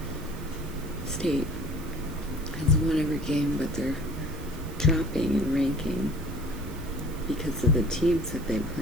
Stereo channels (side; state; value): right; noise; hiss, 19 dB below the sound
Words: State has won every game, but they're dropping in ranking because of the teams that they